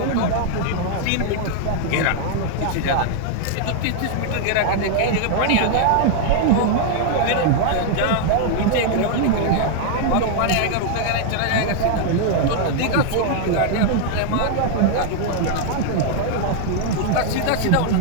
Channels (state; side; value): different; both; correlation 0.00